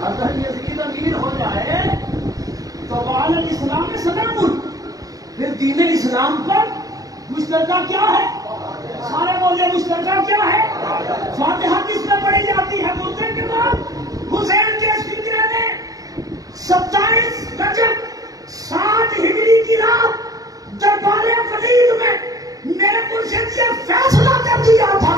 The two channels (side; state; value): left; late; 0.17 ms